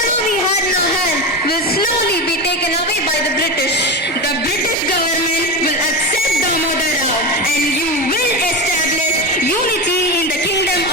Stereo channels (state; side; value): normal; both; correlation 0.20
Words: we had in our hand will slowly be taken away by the British. The British government will accept Damodar Rao and you will establish unity in the kingdom